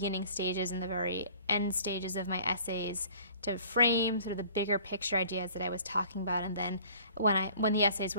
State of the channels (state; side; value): inverted; both; correlation -0.51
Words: stages and the very end stages of my essays to frame sort of the bigger picture ideas that I was talking about, and then when the essays